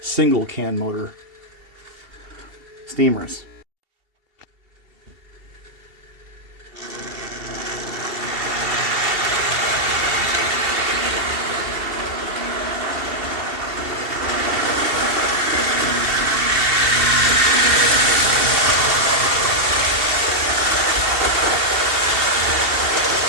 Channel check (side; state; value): left; late; 2.7 ms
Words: single can motor steamers.